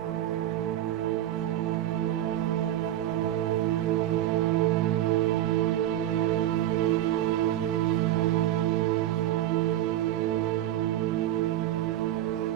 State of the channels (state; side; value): quieter; left; 13.0 dB